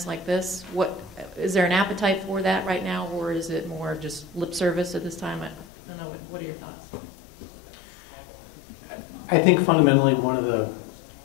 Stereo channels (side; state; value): right; drops out; at 5.7 s